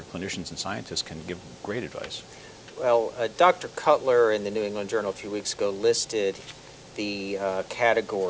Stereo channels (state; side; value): identical; both; correlation 1.00